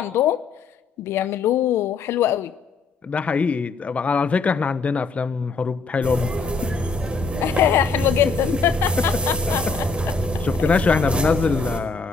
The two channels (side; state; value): right; quieter; 4.5 dB